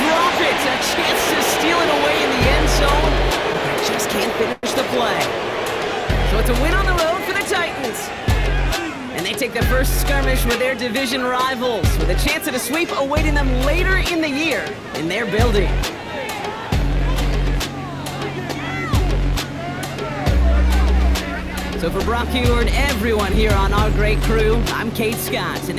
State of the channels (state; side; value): identical; both; correlation 1.00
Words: drop it. A chance to steal it away in the end zone. They just can't finish the play. So it's a win on the road for the Titans. And they take the first skirmish with their division rivals, with a chance at a sweep awaiting them later in the year in their building. So for Brock Huard, everyone here on our great crew, I'm Kate Scott, and